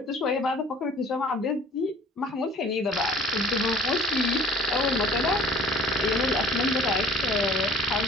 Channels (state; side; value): normal; both; correlation 0.50